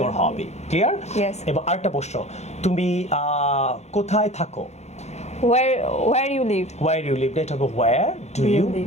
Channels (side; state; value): right; late; 0.32 ms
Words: hobby? Clear? Yes. এবার আরেকটা প্রশ্ন, তুমি কোথায় থাকো? Where you live? Where you live, এটা হবে where do you